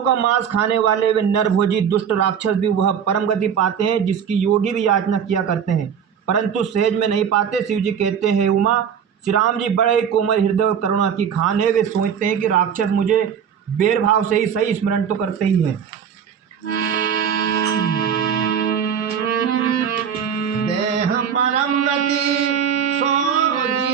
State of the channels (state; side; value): quieter; left; 7.9 dB